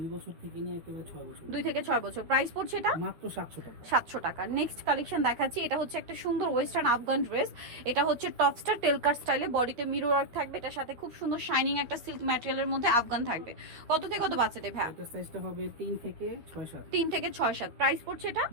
বছর থেকে নিয়ে একেবারে 6 বছর। 2 থেকে 6 বছর। প্রাইস পড়ছে এটা মাত্র 700 টাকা। 700 টাকা। নেক্সট কালেকশন দেখাচ্ছি। এটা হচ্ছে একটা সুন্দর ওয়েস্টার্ন আফগান ড্রেস। এটা হচ্ছে টপসটা টেলকার স্টাইলে, বডিতে মিরর ওয়ার্ক থাকবে। এটার সাথে খুব সুন্দর শাইনিং একটা সিল্ক ম্যাটেরিয়ালের মধ্যে আফগান থাকবে। কত থেকে কত বাচ্চাদের ভাই? এটা সাইজটা হবে 3 থেকে 6-7। 3 থেকে 6-7। প্রাইস পড়ছে এটা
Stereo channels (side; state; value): left; late; 13 ms